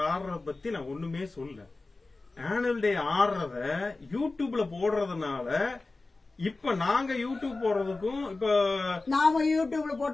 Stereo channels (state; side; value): quieter; right; 3.4 dB